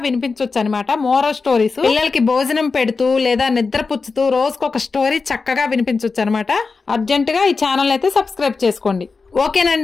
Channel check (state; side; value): quieter; right; 4.4 dB